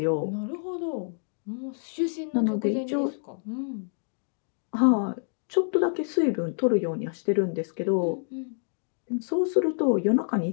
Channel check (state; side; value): silent; right; digital silence